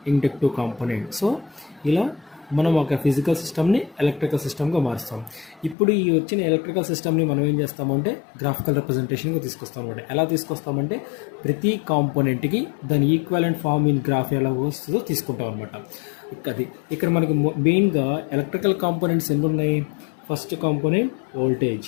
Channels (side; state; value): right; drops out; at 5.8 s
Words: inductive component. So ఇలా మనం ఒక ఫిజికల్ సిస్టమ్ని ఎలక్ట్రికల్ సిస్టమ్గా మారుస్తాం. ఇప్పుడు ఈ వచ్చిన ఎలక్ట్రికల్ సిస్టమ్ని మనం ఏం చేస్తామంటే గ్రాఫికల్ రిప్రజెంటేషన్గా తీసుకొస్తాం అనమాట. ఎలా తీసుకొస్తామంటే ప్రతి కాంపోనెంట్కి దాని ఈక్వలెంట్ ఫామ్ ఇన్ గ్రాఫ్ ఎలా వస్తుందో తీసుకుంటాం అనమాట. అది ఇక్కడ మనకి మెయిన్గా ఎలక్ట్రికల్ కాంపోనెంట్స్ ఎన్ని ఉన్నాయి, first component voltage,